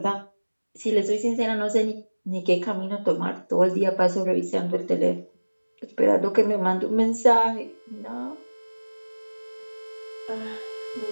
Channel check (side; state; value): both; inverted; correlation -1.00